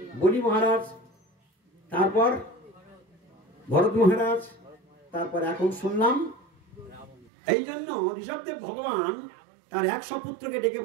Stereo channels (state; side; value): drops out; left; at 7.2 s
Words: বলি মহারাজ, তারপর ভরত মহারাজ, তারপর এখন শুনলাম। এই জন্য ঋষভদেব ভগবান তার 100 পুত্রকে ডেকে